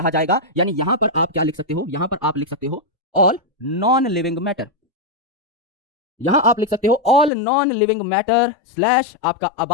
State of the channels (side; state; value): right; drops out; at 7.3 s